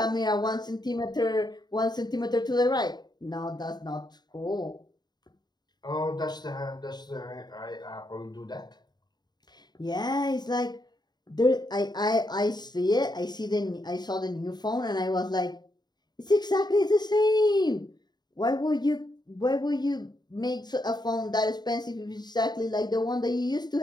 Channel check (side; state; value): right; late; 0.20 ms